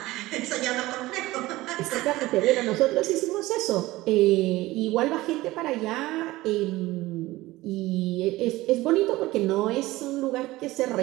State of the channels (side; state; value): left; quieter; 18.4 dB